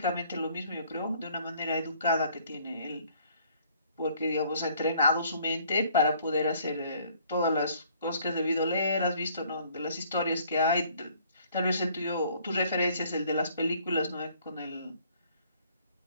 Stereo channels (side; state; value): both; inverted; correlation -0.60